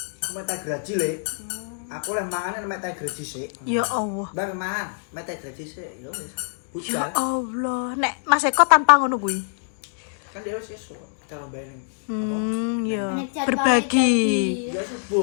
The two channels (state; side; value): silent; right; digital silence